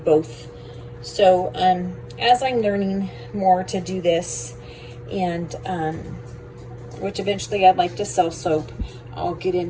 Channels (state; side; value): identical; both; correlation 1.00